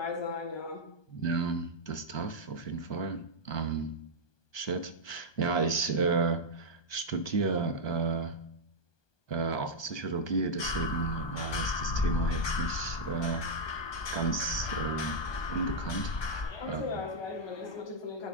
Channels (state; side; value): late; right; 1.2 ms